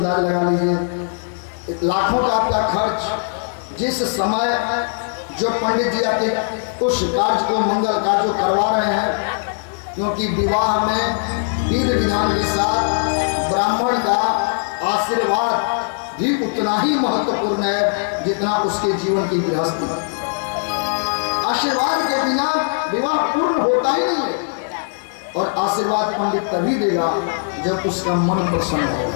लगा लीजिए। लाखों का आपका खर्च, जिस समय जो पंडित जी आपके उस कार्य को, मंगल कार्य को करवा रहे हैं, क्योंकि विवाह में विधि विधान के साथ ब्राह्मण का आशीर्वाद भी उतना ही महत्वपूर्ण है जितना उसके जीवन की गृहस्थी। आशीर्वाद के बिना विवाह पूर्ण होता ही नहीं है, और आशीर्वाद पंडित तभी देगा जब उसका मन प्रसन्न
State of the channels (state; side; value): silent; right; digital silence